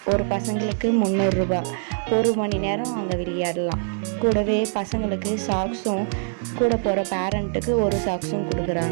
ஒரு பசங்களுக்கு 300 ரூபா, 1 மணி நேரம் அங்கே விளையாடலாம். கூடவே பசங்களுக்கு சாக்ஸும், கூட போகிற பேரண்ட்டுக்கு ஒரு சாக்ஸும்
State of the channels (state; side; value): silent; left; 63 dB below the other